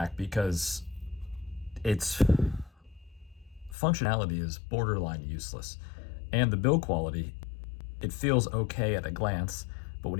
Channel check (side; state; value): right; drops out; at 3.8 s